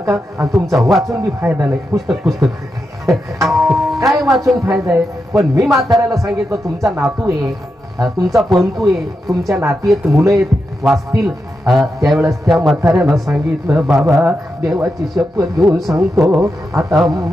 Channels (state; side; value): normal; both; correlation 0.87